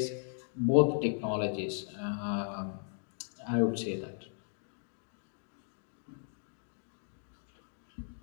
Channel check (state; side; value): silent; right; 53 dB below the other